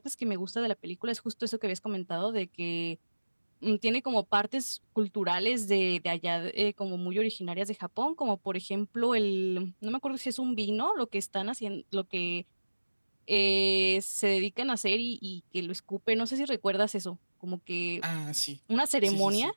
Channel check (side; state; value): both; inverted; correlation -1.00